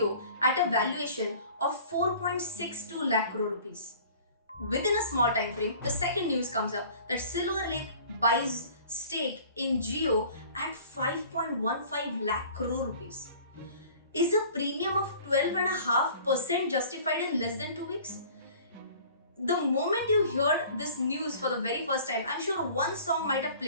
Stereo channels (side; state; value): both; inverted; correlation -0.48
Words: at a valuation of 4.62 lakh crore rupees. Within a small time frame, the second news comes up that Silver Lake buys stake in Jio at 5.15 lakh crore rupees. Is a premium of 12.5% justified in less than 2 weeks? The moment you heard this news for the very first time, I'm sure one song might have